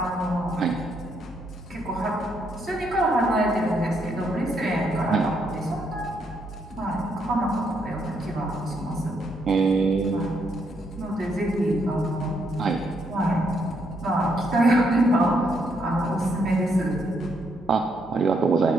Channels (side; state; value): both; normal; correlation 0.75